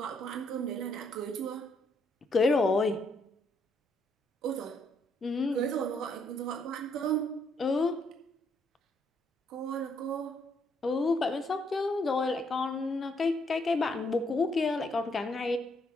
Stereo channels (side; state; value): both; normal; correlation 0.72